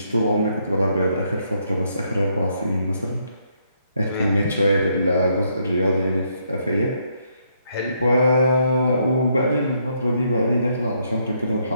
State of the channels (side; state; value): both; inverted; correlation -0.74